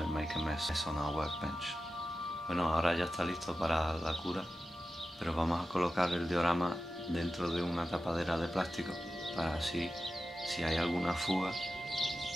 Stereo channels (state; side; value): normal; both; correlation 0.93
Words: make a mess on our workbench. Bueno, ahora ya está listo para la cura, pero vamos a colocar el diorama dentro de una tapadera de plástico para así, si hay alguna fuga,